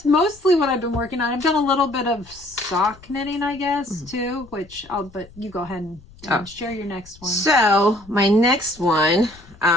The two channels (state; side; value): noise; left; rumble, 24 dB below the sound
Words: mostly what I've been working on. I've done a little bit of sock knitting, I guess, too. But you go ahead and share your next one. So my next one